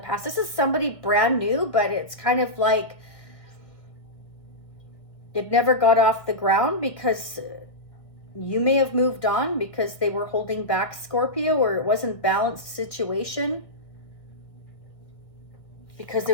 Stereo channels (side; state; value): right; late; 1.6 ms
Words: This is somebody brand new, but it's kind of like it never got off the ground because you may have moved on because they were holding back, Scorpio, or it wasn't balanced situation because they